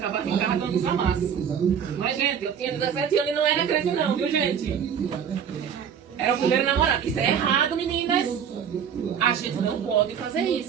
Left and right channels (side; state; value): left; quieter; 7.9 dB